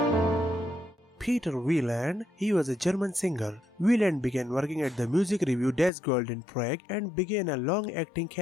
Peter Wieland, he was a German singer. Wieland began working at the music review Das Gold in Prague and began a long acting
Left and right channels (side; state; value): right; drops out; at 5.9 s